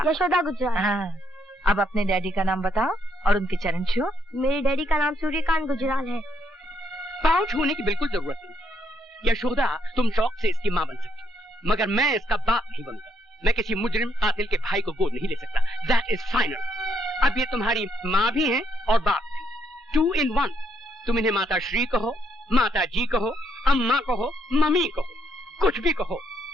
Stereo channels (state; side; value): normal; both; correlation 0.74